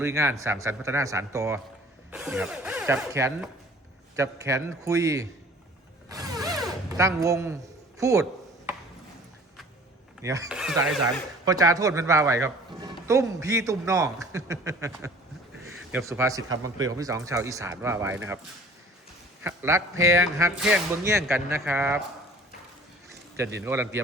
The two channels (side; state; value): both; normal; correlation 0.49